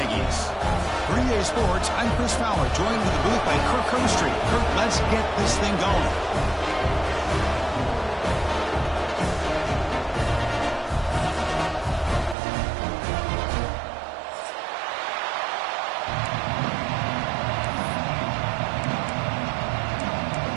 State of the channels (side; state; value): left; drops out; at 12.4 s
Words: For EA Sports, I'm Chris Fowler, joined in the booth by Kirk Herbstreit. Kirk, let's get this thing going.